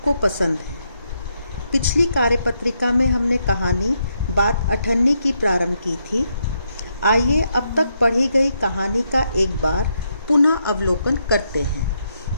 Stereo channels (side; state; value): both; inverted; correlation -0.79